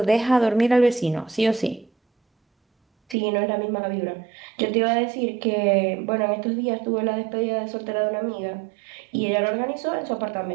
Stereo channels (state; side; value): drops out; left; at 3.2 s